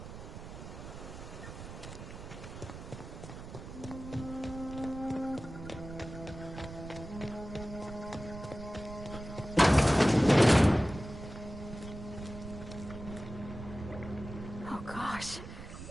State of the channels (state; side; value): noise; right; rumble, 11 dB below the sound